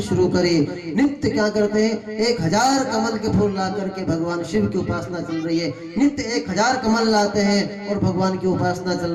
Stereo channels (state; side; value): identical; both; correlation 1.00